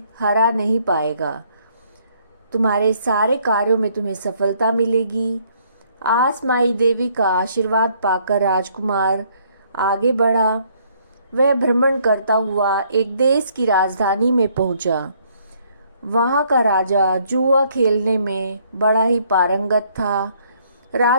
हरा नहीं पाएगा। तुम्हारे सारे कार्यों में तुम्हें सफलता मिलेगी। आस माई देवी का आशीर्वाद पाकर राजकुमार आगे बढ़ा। वह भ्रमण करता हुआ एक देश की राजधानी में पहुंचा। वहां का राजा जुआ खेलने में बड़ा ही पारंगत था।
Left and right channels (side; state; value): both; inverted; correlation -0.65